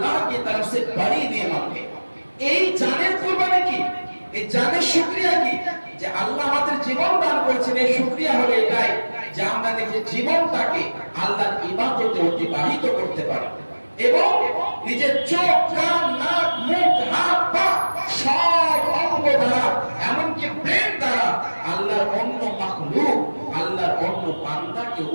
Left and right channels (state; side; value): inverted; both; correlation -1.00